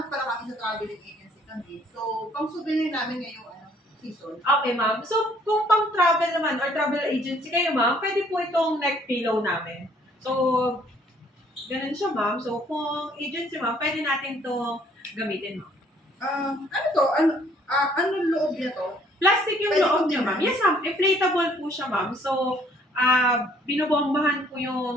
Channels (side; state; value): both; normal; correlation 0.62